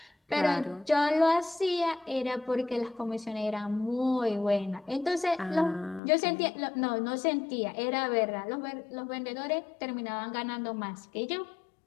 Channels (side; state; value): right; drops out; at 6.0 s